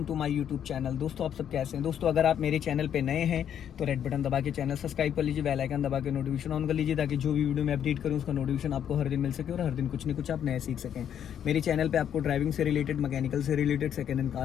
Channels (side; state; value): right; quieter; 9.3 dB